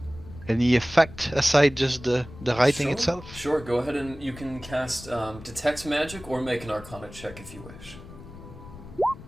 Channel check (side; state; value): left; noise; rumble, 16 dB below the sound